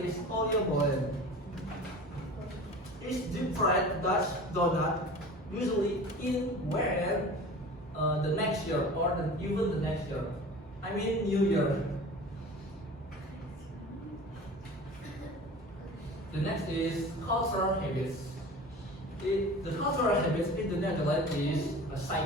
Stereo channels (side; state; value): both; normal; correlation 0.38